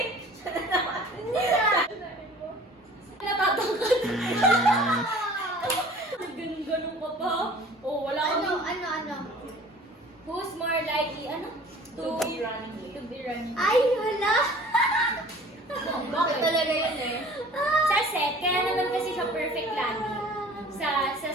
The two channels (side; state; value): both; normal; correlation 0.47